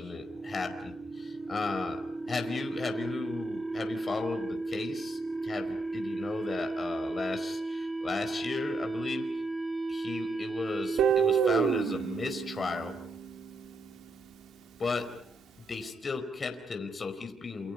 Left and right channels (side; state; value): both; normal; correlation 0.80